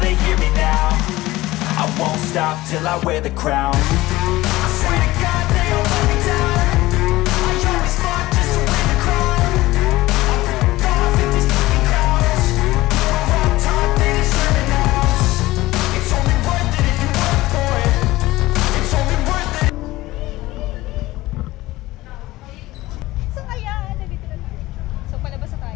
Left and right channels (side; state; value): right; quieter; 18.2 dB